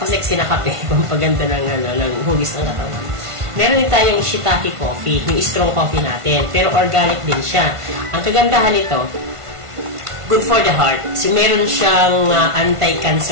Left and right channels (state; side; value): late; left; 1.5 ms